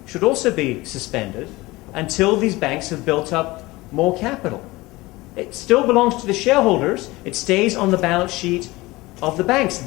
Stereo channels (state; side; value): quieter; right; 20.7 dB